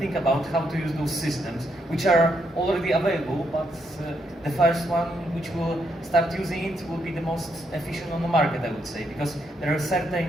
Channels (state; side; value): normal; both; correlation 0.77